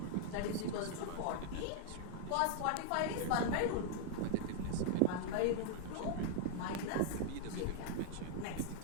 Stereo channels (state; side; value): different; both; correlation 0.00